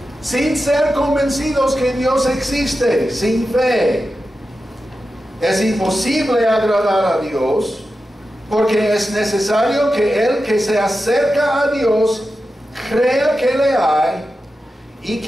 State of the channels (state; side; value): normal; both; correlation 0.91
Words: Sin ser convencidos que Dios existe, sin fe, es imposible agradar a Dios, porque es necesario que el que se acerca a Dios crea que le hay y